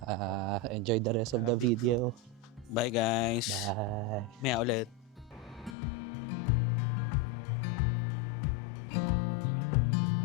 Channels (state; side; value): drops out; right; at 5.8 s